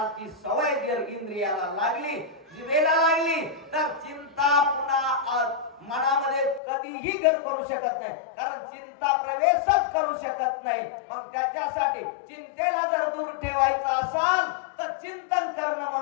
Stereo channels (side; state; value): right; drops out; at 6.6 s